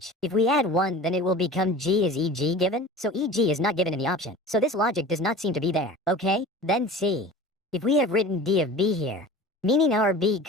If we add 1, then it will become G. Is EG given? So EG is not given in the option. So this logic does not seem to be there, okay? Then C. If we have written D of B here, meaning our B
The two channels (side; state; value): both; normal; correlation 0.38